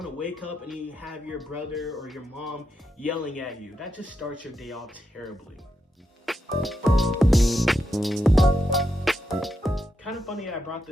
to wake up and you have your brother or your mom yelling at you. That just starts your day off terribly. Kind of funny I brought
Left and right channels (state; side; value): normal; both; correlation 0.84